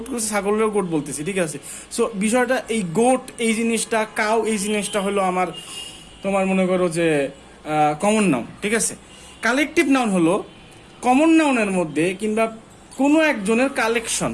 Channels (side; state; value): both; identical; correlation 1.00